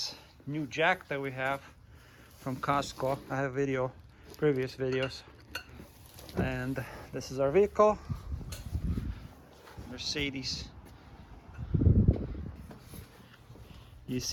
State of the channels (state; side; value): identical; both; correlation 1.00